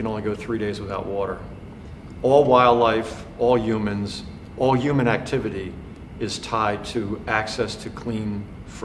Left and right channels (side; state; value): both; identical; correlation 1.00